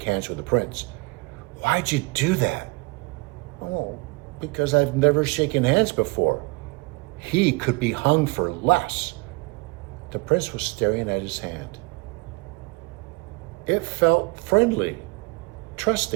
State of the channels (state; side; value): quieter; left; 26.8 dB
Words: hands with the prince. Why'd you do that? Oh, because I've never shaken hands before. He could be hung for less. The prince was staring at his hand. It felt friendly,